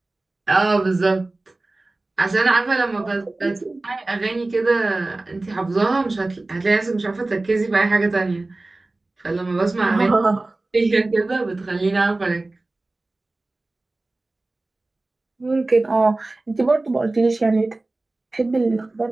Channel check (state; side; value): quieter; left; 3.0 dB